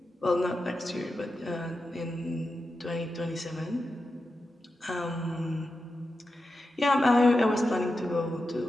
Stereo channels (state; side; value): normal; both; correlation 0.90